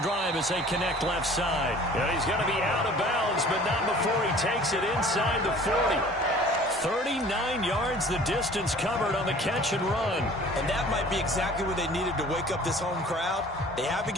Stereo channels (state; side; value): normal; both; correlation 0.48